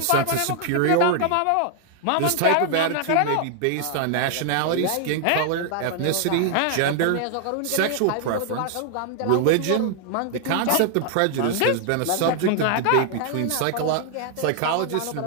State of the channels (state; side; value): different; both; correlation 0.00